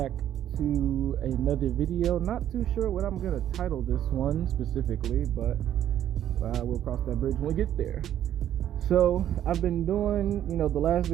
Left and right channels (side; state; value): left; quieter; 11.1 dB